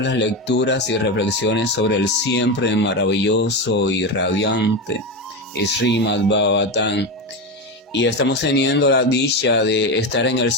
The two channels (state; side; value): normal; both; correlation 0.16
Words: las lecturas y reflexiones sobre el siempre maravilloso y radiante Srimad Bhagavatam. Y estamos teniendo la dicha de estar en el